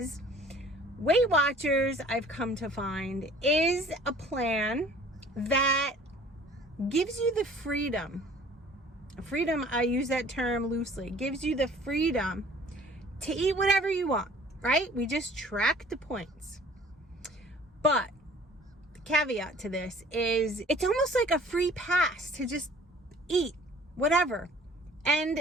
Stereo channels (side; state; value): both; normal; correlation 0.51